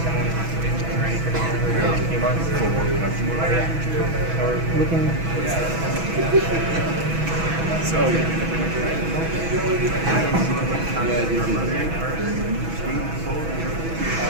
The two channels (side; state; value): left; late; 6.1 ms